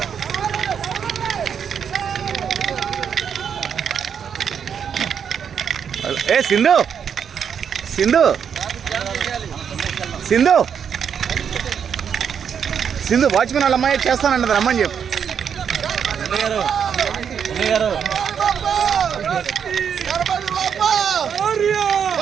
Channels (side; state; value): left; quieter; 7.6 dB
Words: ఏ సింధు సింధు సింధు సింధు వాచ్మెన్ వాళ్ళ అమ్మాయి చేస్తానన్నది రమ్మని చెప్పు.